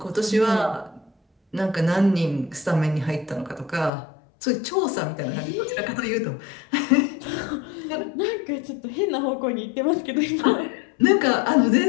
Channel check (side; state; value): right; drops out; at 3.9 s